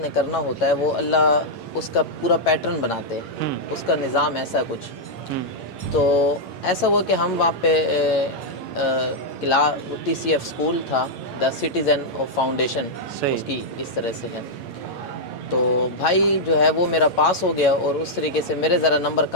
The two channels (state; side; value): late; right; 8.8 ms